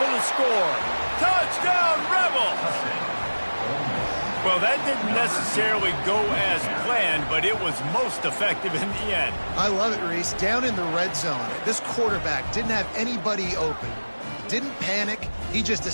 the score. Touchdown, Rebels! Well, that didn't necessarily go as planned, but it was most effective in the end. I love it, Reese. Down in the red zone, this quarterback didn't have anybody open. Didn't panic. He just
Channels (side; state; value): both; inverted; correlation -1.00